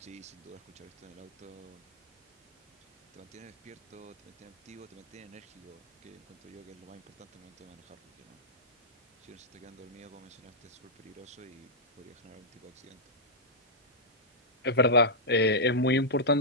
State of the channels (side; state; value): both; normal; correlation -0.10